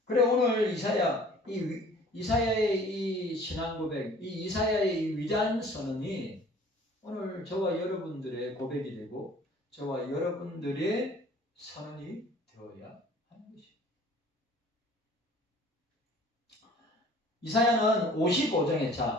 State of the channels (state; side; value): normal; both; correlation 0.51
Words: 그래 오늘 이사야의 이 신앙 고백, 이 이사야의 이 위대한 선언이 오늘 저와 여러분들의 고백이 되고 저와 여러분들의 선언이 되어야 하는 것입니다. 이사야는